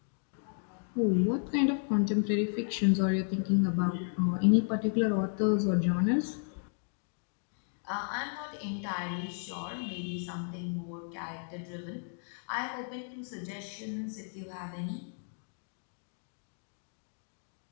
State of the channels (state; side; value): silent; right; 56 dB below the other